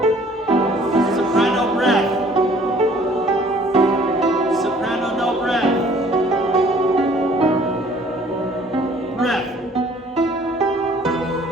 Soprano breath. Soprano no breath. Breath.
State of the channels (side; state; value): both; normal; correlation 0.56